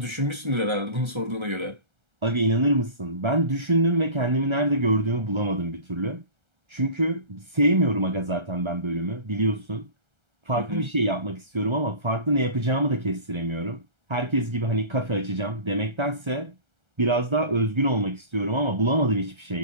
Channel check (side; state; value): left; late; 1.3 ms